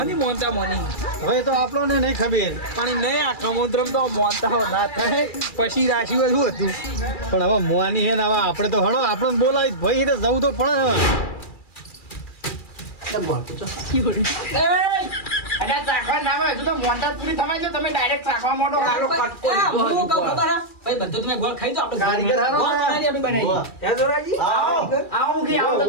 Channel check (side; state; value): right; late; 2.4 ms